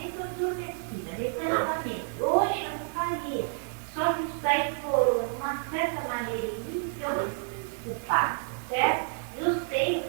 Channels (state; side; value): silent; left; 58 dB below the other